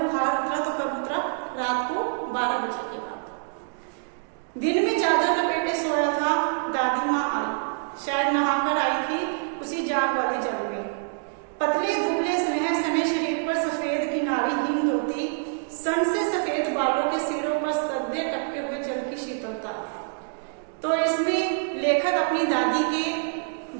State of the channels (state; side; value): silent; left; digital silence